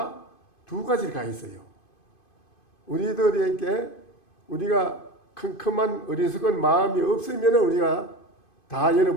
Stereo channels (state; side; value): late; right; 2.5 ms